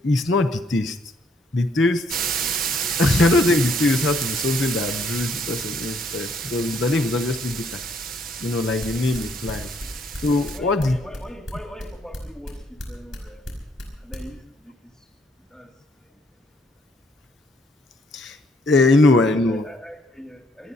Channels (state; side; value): normal; both; correlation 0.68